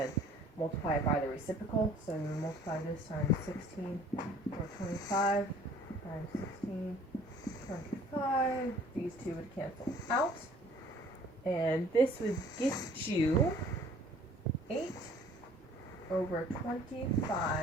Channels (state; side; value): normal; both; correlation 0.53